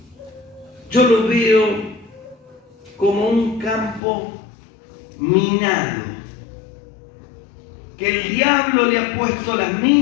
yo lo veo como un campo minado, que el diablo le ha puesto las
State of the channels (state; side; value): drops out; right; at 4.0 s